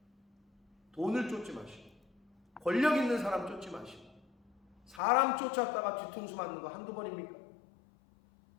돈을 쫓지 마시고 권력 있는 사람 쫓지 마시고 사람 쫓았다가 뒤통수 맞는 거 한두 번입니까?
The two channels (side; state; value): right; drops out; at 5.0 s